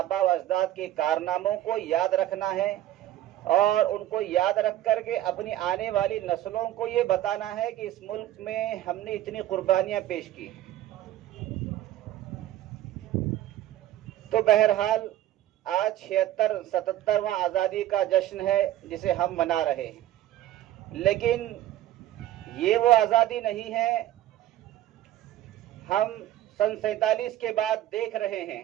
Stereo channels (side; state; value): left; quieter; 13.5 dB